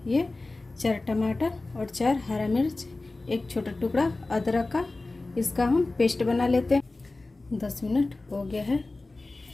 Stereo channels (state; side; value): quieter; right; 3.2 dB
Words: 4 टमाटर और 4 हरा मिर्च, 1 छोटा टुकड़ा अदरक का, इसका हम पेस्ट बना लेते हैं। 10 मिनट हो गया है।